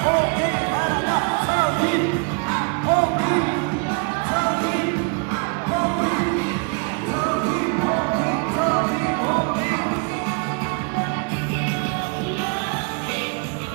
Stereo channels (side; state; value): left; quieter; 35.3 dB